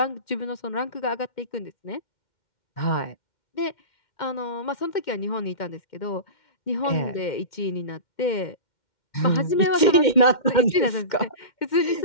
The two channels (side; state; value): right; late; 2.1 ms